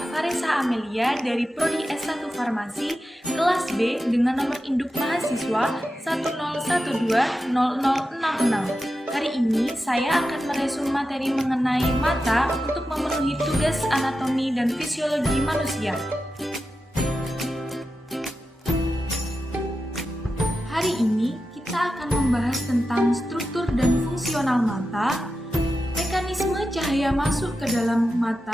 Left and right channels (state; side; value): normal; both; correlation 0.91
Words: Farisa Amelia dari Prodi S1 Farmasi kelas B dengan nomor induk mahasiswa 101200066. Hari ini saya akan meresum materi mengenai mata untuk memenuhi tugas anatomi dan fisiologi manusia. Hari ini kita akan membahas tentang struktur dan fungsional mata, mekanisme cahaya masuk ke dalam